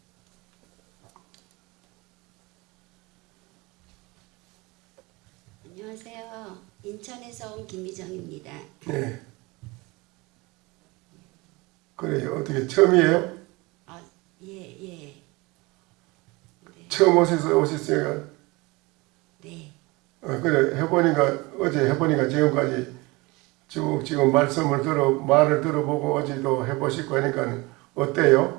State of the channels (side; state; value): left; quieter; 24.1 dB